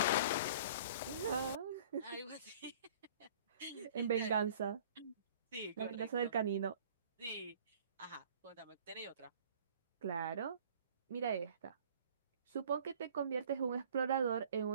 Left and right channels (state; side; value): inverted; both; correlation -0.51